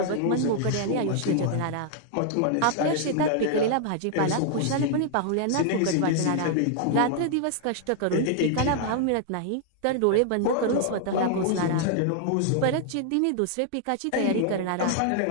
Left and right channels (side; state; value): both; different; correlation 0.00